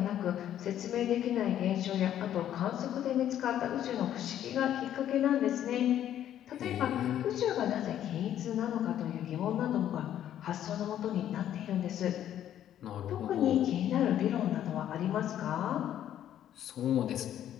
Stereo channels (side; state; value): right; quieter; 11.0 dB